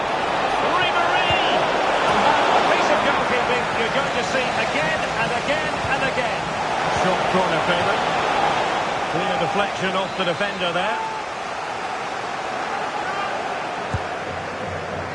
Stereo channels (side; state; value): both; identical; correlation 1.00